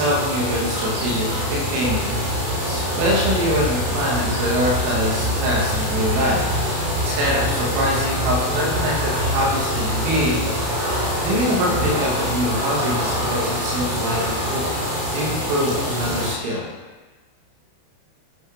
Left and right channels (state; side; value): late; left; 32 ms